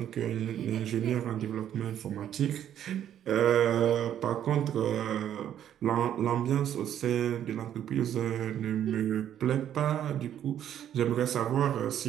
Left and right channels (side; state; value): left; quieter; 10.3 dB